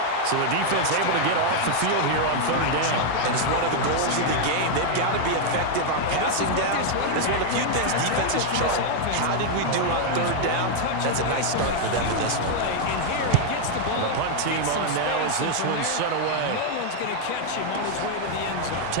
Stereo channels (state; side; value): different; both; correlation 0.00